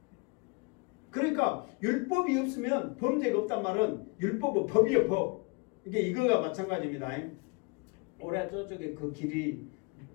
그러니까 율법이 없으면 범죄가 없단 말은 율법은 법이에요 법. 이게 이거가 마찬가지입니다. 올해 저쪽에 그 길이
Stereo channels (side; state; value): right; quieter; 31.1 dB